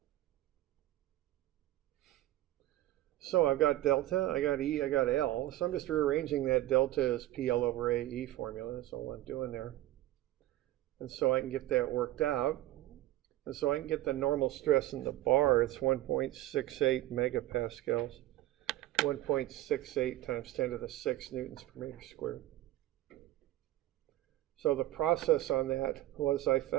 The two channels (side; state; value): left; quieter; 15.5 dB